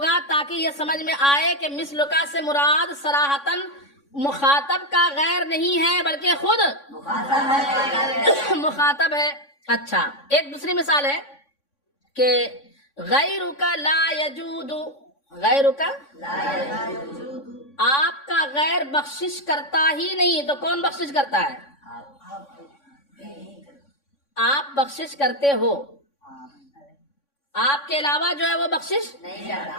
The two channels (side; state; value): right; late; 3.6 ms